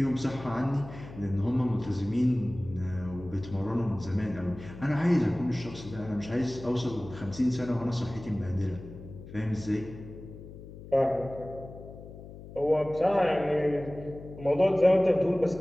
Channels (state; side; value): noise; left; hum, 15 dB below the sound